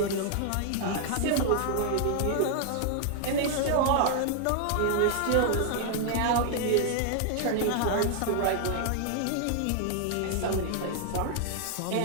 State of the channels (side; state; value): both; different; correlation 0.00